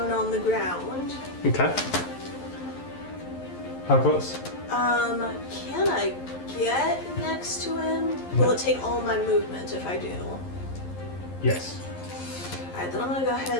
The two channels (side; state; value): right; late; 11 ms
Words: on the ground. Okay. How close? Can I get next to him? Will it take all my movement if I do? Yes. Alright, then I'm gonna go